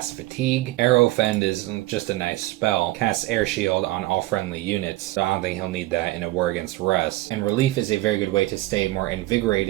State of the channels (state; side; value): quieter; left; 17.9 dB